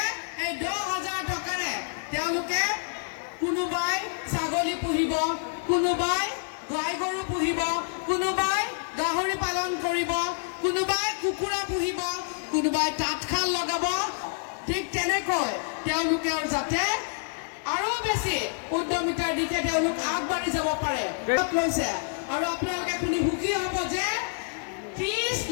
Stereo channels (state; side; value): silent; right; 60 dB below the other